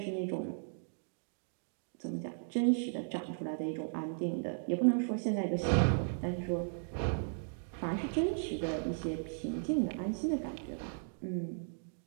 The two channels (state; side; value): silent; left; digital silence